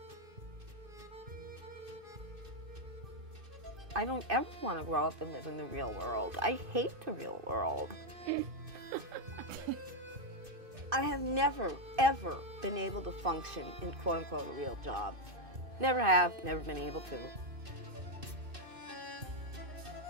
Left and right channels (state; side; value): late; left; 2.5 ms